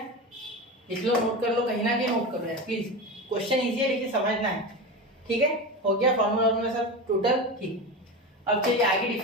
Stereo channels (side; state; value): both; normal; correlation 0.23